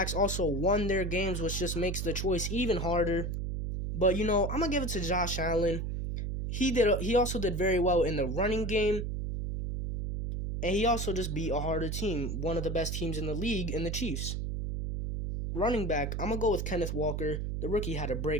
also won their games, which just makes the choice even harder. But I'm going to give it to Josh Allen. He also did very well in the running game. And he also just beat a harder team, one of the best teams in the league, in the Chiefs. Running back, I'm going to go with Kenneth Walker. The rookie had a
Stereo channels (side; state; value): right; noise; hum, 2 dB below the sound